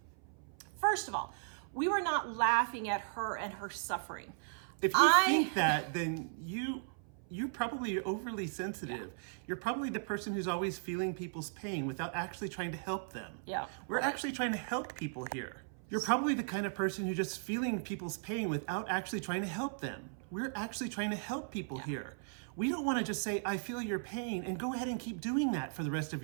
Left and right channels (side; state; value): left; silent; 53 dB below the other